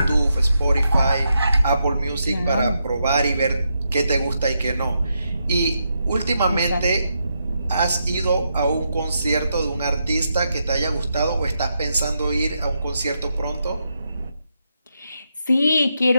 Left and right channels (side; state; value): both; inverted; correlation -0.82